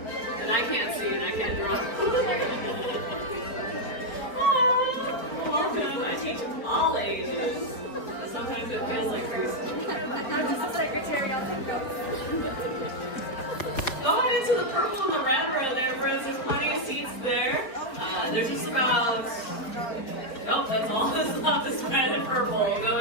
And I can't see and I can't draw. Welcome. I teach all ages. Sometimes it feels like crazy. I'm just a secretary on the go. Go on into the purple and the red row there, friends. There's plenty of seats there. There's just about... Nope, that's all that's not this red and purple. We'll go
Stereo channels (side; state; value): right; late; 4.6 ms